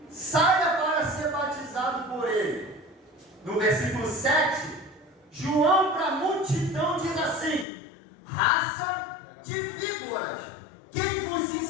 saia para ser batizado por ele. No versículo 7, João para a multidão diz assim, raça de víboras, quem vos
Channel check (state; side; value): drops out; right; at 7.7 s